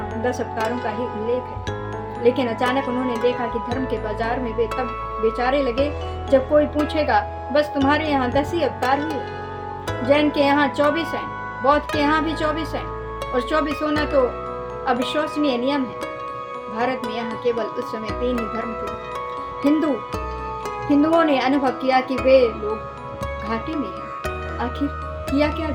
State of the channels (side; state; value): both; identical; correlation 1.00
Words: 10 अवतारों का ही उल्लेख है, लेकिन अचानक उन्होंने देखा कि धर्म के बाजार में वे तब बेचारे लगे जब कोई पूछेगा, बस तुम्हारे यहाँ 10 ही अवतार हुए। जैन के यहाँ 24 हैं, बौद्ध के यहाँ भी 24 हैं, और 24 होना तो अविश्वसनीय नियम है। भारत में यहाँ केवल उस समय 3 ही धर्म थे। हिंदुओं ने अनुभव किया कि वे लोग घाटे में हैं। आखिर किया क्या